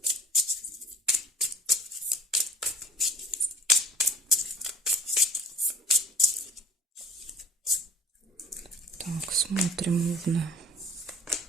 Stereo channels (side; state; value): both; normal; correlation 0.47